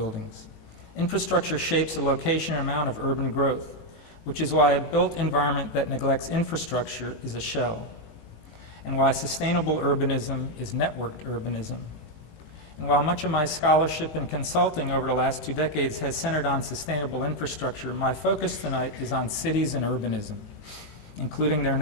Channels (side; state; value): right; late; 18 ms